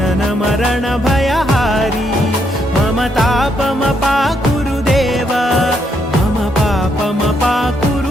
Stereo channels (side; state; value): both; normal; correlation 0.75